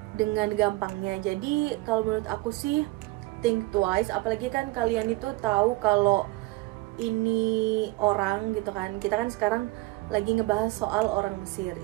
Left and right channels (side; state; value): left; quieter; 20.8 dB